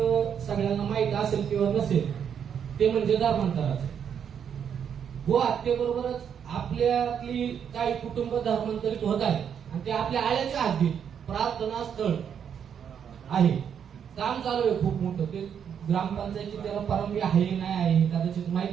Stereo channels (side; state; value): left; quieter; 8.0 dB